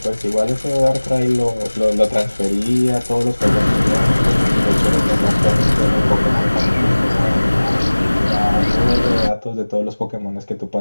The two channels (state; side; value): inverted; both; correlation -1.00